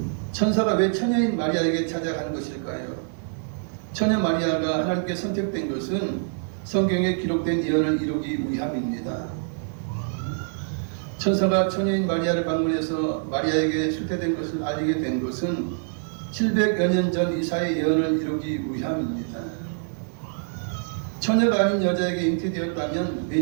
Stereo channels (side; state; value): left; silent; 59 dB below the other